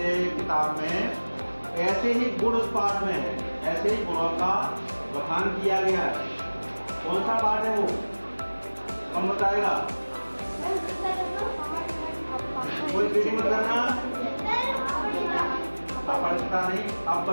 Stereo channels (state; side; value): inverted; both; correlation -1.00